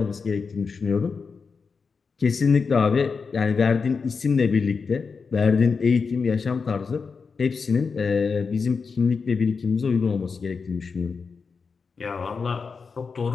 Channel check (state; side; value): quieter; right; 5.1 dB